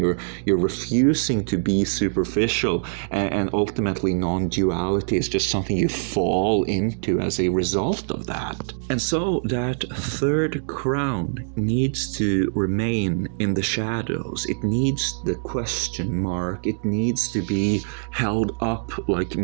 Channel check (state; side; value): silent; left; digital silence